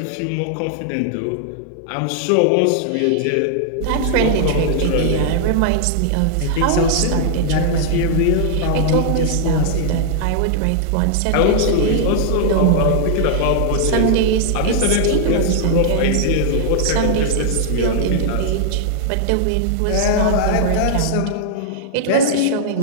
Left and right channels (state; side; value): different; both; correlation -0.01